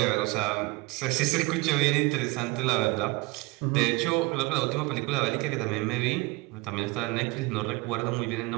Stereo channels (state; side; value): quieter; left; 22.2 dB